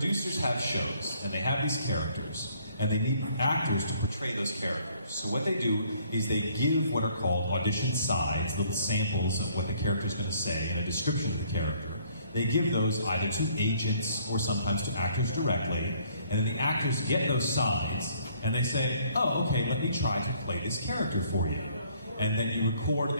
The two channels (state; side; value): inverted; both; correlation -0.62